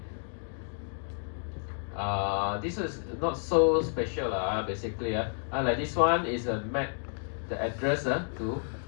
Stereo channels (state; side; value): silent; right; digital silence